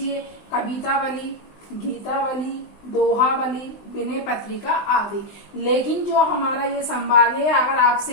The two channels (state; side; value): late; right; 20 ms